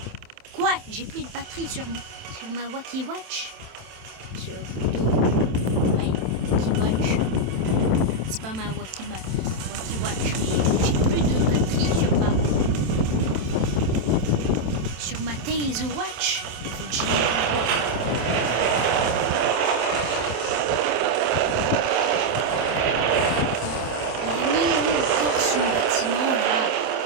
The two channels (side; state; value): left; late; 27 ms